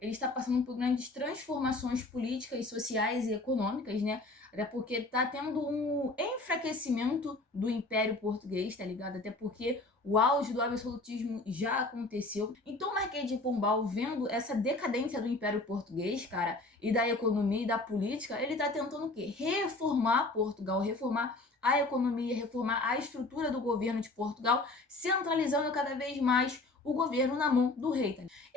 ele está passando por grandes transformações políticas, sociais e econômicas, né? Até porque tá tendo um enfraquecimento do Império Português, tá ligado? Até porque o auge do absolutismo já aconteceu. Então o Marquês de Pombal, vendo essa decadência do Império Português, cara, e da economia e da política, ele tá tentando o quê? Reformar Portugal, reformar a economia, reformar a estrutura do governo de Portugal, centralizando cada vez mais o governo na mão do rei. Tá?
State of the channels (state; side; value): quieter; right; 3.1 dB